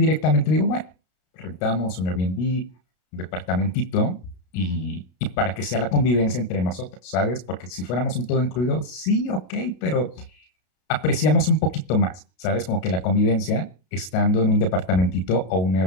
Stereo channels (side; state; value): right; late; 33 ms